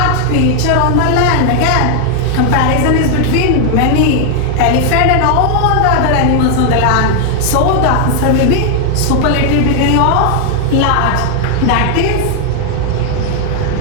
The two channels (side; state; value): both; different; correlation 0.00